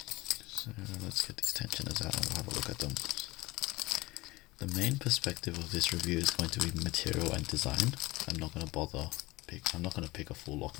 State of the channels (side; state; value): right; quieter; 20.7 dB